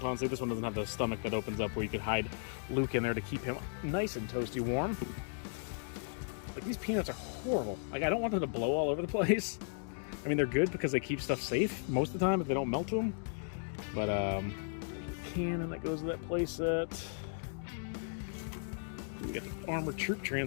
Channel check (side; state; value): right; silent; digital silence